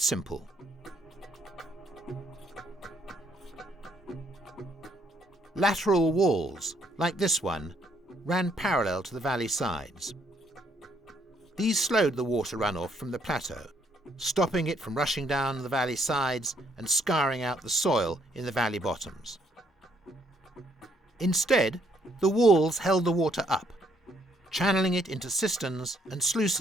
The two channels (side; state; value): both; normal; correlation 0.69